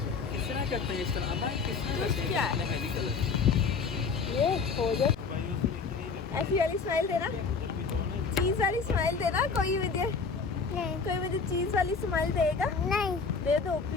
तरह करते हैं इस तरह? जूस क्या है? ये हो जाए। ऐसी वाली स्माइल देना, चीज वाली स्माइल देना। कोई मुझे चीज वाली स्माइल देगा? नहीं दे दो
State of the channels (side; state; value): right; quieter; 5.0 dB